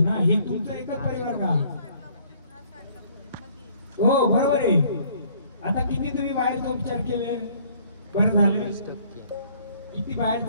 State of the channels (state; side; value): inverted; both; correlation -0.60